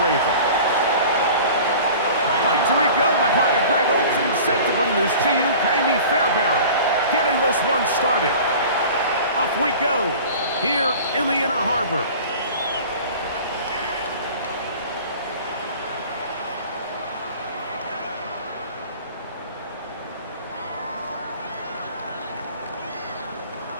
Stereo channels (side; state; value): both; inverted; correlation -0.42